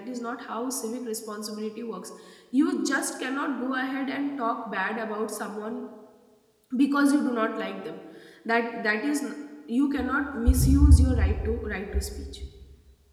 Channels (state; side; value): identical; both; correlation 1.00